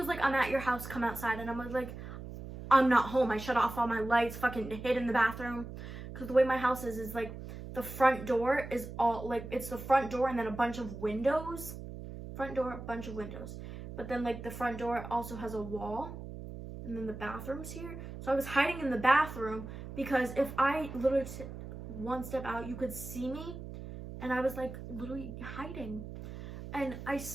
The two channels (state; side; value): noise; right; hum, 10 dB below the sound